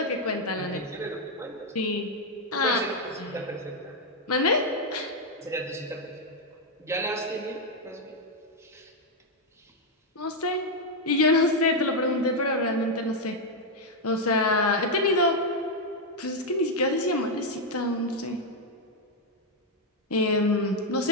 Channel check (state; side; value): normal; both; correlation 0.01